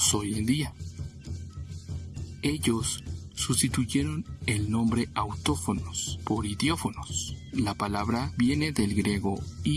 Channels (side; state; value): both; identical; correlation 1.00